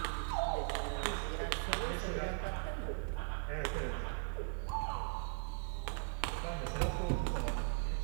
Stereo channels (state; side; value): silent; left; 52 dB below the other